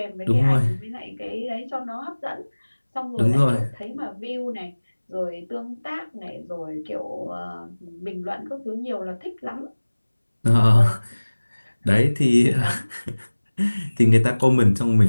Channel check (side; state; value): both; inverted; correlation -1.00